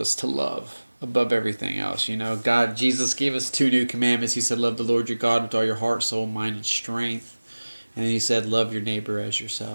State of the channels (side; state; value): both; inverted; correlation -1.00